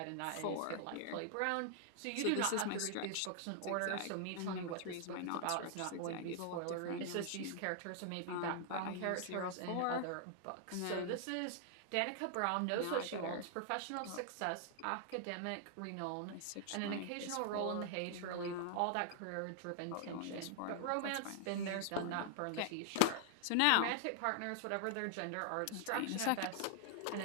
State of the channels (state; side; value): different; both; correlation 0.00